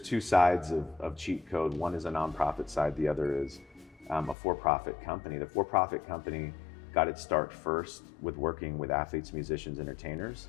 sides of cheat code. One is a nonprofit side, the other is a for-profit company. The for-profit company got its start first with working with athletes, musicians, entertainers.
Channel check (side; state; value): right; drops out; at 4.4 s